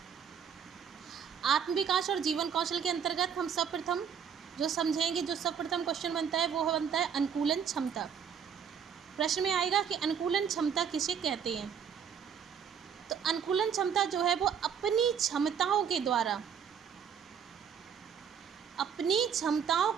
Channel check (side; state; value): left; quieter; 7.6 dB